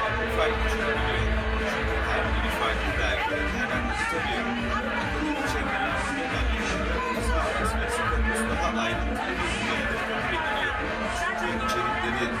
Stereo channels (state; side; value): identical; both; correlation 1.00